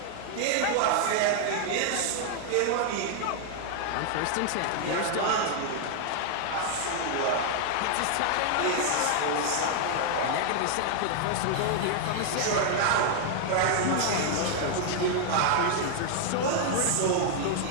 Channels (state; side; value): different; both; correlation 0.00